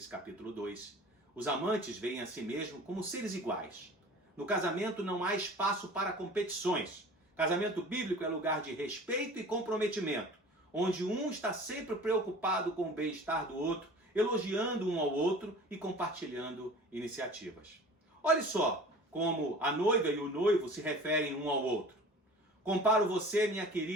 capítulo 2. Os amantes veem a si mesmos como seres iguais. No casamento não há espaço para competições. Casamento bíblico é lugar de respeito e comprometimento, onde um está sempre preocupado com o bem-estar do outro, elogiando um ao outro e compartilhando iniciativas. Olhe só como a noiva e o noivo se referem um ao outro. Comparo você, minha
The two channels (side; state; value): both; normal; correlation 0.42